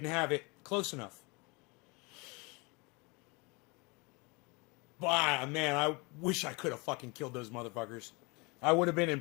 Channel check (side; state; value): right; quieter; 27.9 dB